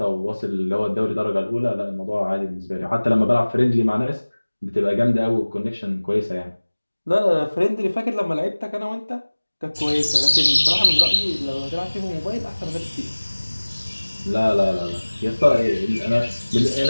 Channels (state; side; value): inverted; both; correlation -1.00